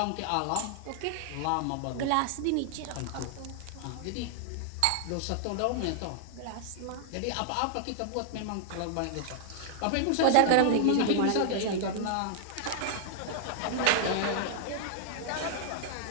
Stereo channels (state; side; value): different; both; correlation -0.01